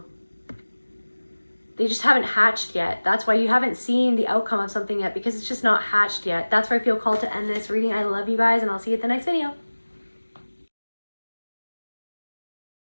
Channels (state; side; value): inverted; both; correlation -1.00